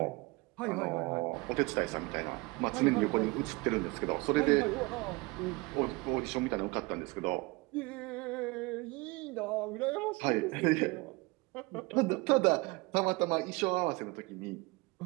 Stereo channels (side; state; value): left; quieter; 24.9 dB